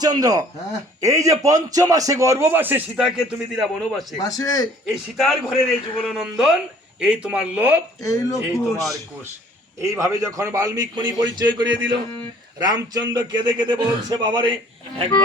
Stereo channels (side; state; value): both; normal; correlation 0.55